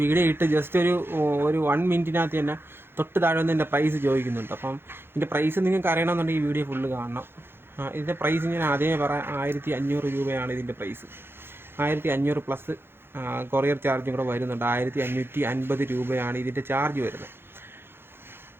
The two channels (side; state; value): left; late; 0.11 ms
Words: വീഡിയോ ഇട്ട് ജസ്റ്റ് ഒരു 1 മിനിറ്റിനകത്ത് തന്നെ തൊട്ട് താഴെ വന്ന് എൻ്റെ പ്രൈസ് ചോദിക്കുന്നുണ്ട്. അപ്പം ഇതിൻ്റെ പ്രൈസ് നിങ്ങൾക്ക് അറിയണമെന്നുണ്ടെങ്കിൽ ഈ വീഡിയോ ഫുള്ള് കാണണം. ഇതിൻ്റെ പ്രൈസ് ഞാൻ ആദ്യമേ പറയാം, 1500 രൂപയാണ് ഇതിൻ്റെ പ്രൈസ്. 1500 പ്ലസ് കൊറിയർ ചാർജും കൂടെ വരുന്നുണ്ട്. 1550 രൂപയാണ് ഇതിൻ്റെ ചാർജ് വരുന്നത്.